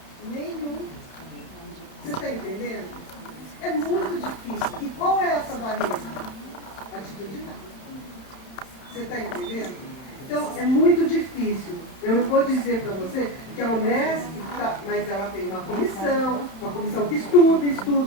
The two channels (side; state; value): right; late; 31 ms